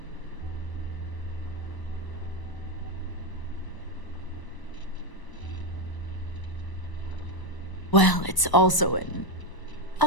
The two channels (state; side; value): late; right; 1.0 ms